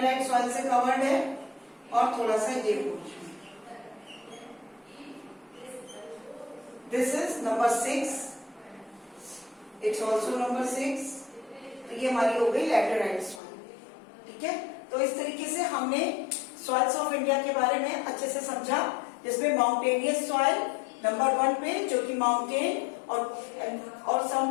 सॉइल से कवर्ड है और थोड़ा सा ये portion. This is number 6, it's also number 6। तो ये हमारी हो गई लैटेराइट सॉइल। ठीक है, तो इस तरीके से हमने सॉइल्स ऑफ इंडिया के बारे में अच्छे से समझा, जिसमें माउंटेनियस सॉइल नंबर 1 पे जो कि माउंटेन और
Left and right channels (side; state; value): right; drops out; at 13.4 s